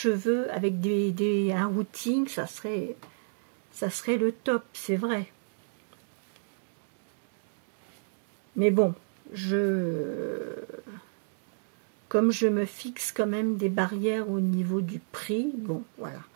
avec un routing, ça serait le top, c'est vrai. Mais bon, comme je me fixe quand même des barrières au niveau du prix, bon, voilà.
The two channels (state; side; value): silent; left; digital silence